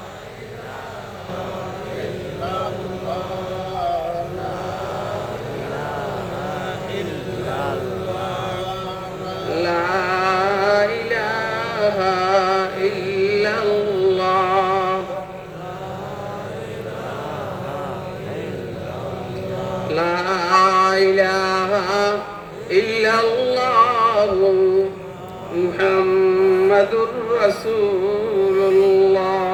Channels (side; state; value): both; identical; correlation 1.00